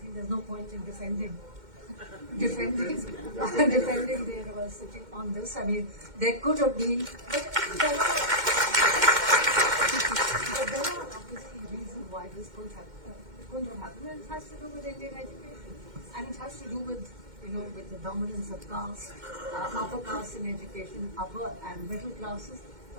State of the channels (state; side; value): late; left; 2.1 ms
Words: there's no point in defending the university on this. I mean, there could have been, but there are obviously reasons why this couldn't have happened, and it has to do with Indian education, and it has to do with with the dominance of caste, upper caste in education, upper and middle classes.